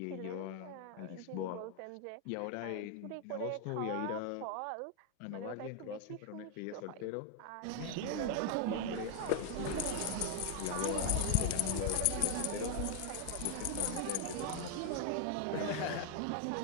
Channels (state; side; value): different; both; correlation 0.00